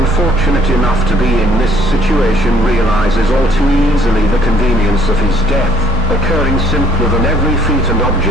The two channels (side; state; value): both; normal; correlation 0.63